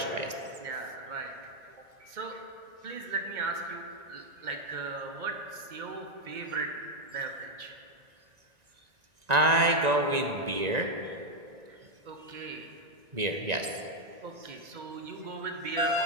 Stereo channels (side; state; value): left; late; 1.9 ms